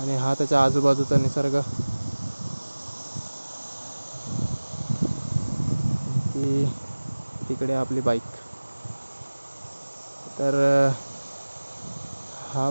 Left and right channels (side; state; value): both; inverted; correlation -1.00